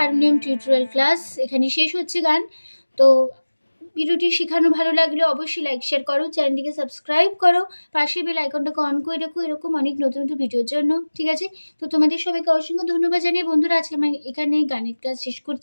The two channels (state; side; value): inverted; both; correlation -1.00